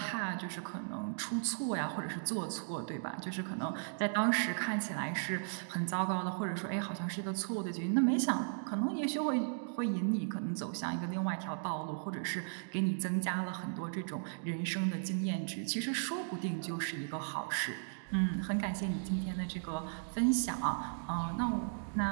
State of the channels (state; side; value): silent; left; digital silence